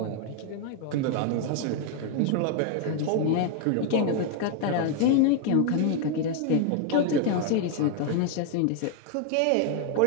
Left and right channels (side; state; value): both; different; correlation 0.00